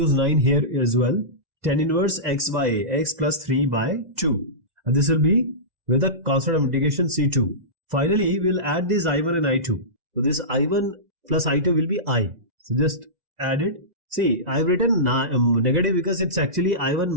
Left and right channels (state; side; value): late; left; 2.0 ms